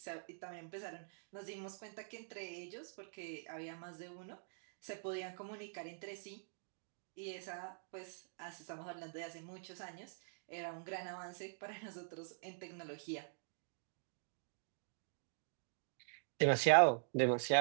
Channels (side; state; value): left; silent; digital silence